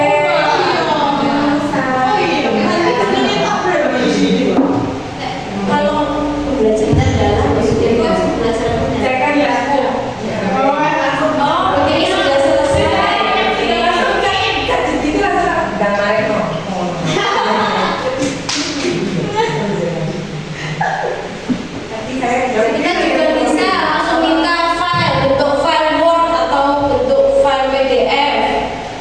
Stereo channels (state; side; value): identical; both; correlation 1.00